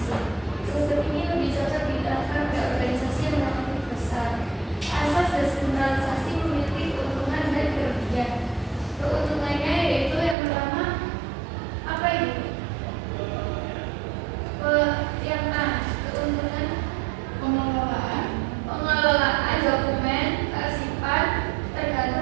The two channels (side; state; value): left; drops out; at 10.4 s